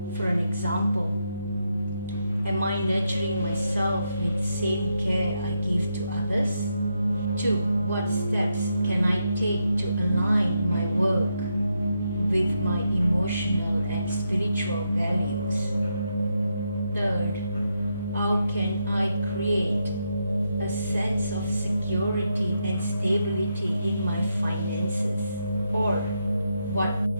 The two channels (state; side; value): inverted; both; correlation -0.82